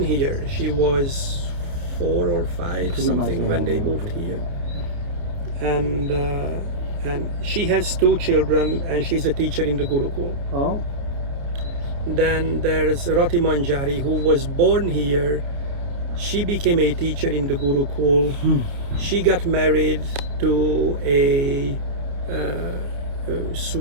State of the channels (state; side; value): late; left; 29 ms